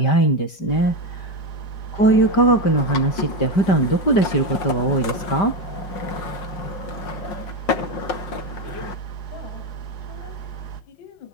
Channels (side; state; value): right; late; 5.6 ms